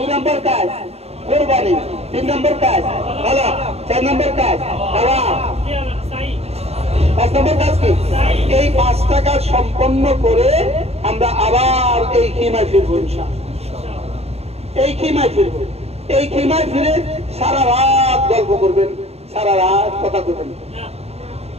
নম্বর কাজ কোরবানি, 3 নম্বর কাজ হলক, 4 নম্বর কাজ তাওয়াফ, 5 নম্বর কাজ কি? এই 5টা কাজ সম্পন্ন করে আমরা আবার এই খিমায় ফিরবো ইনশাআল্লাহ। এই খিমায় ফিরবো। এই খিমায় ফিরে সারা রাত গল্প করবেন, সারা রাত কথা করবেন।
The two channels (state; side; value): late; left; 0.30 ms